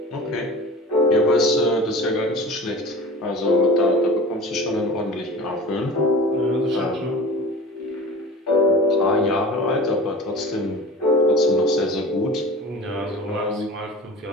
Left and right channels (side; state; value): both; normal; correlation 0.36